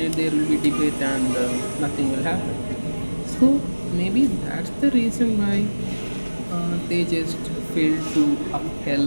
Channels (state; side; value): inverted; both; correlation -1.00